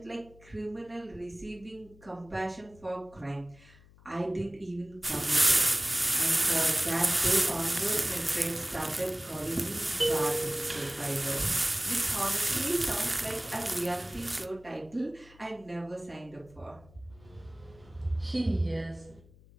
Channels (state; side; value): noise; left; hum, 25 dB below the sound